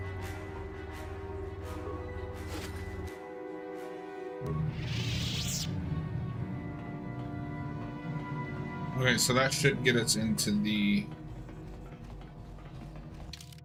Okay, so that should get us into the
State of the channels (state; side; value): identical; both; correlation 1.00